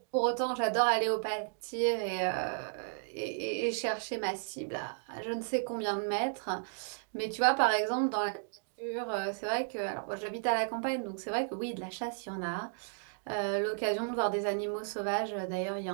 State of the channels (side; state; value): left; silent; digital silence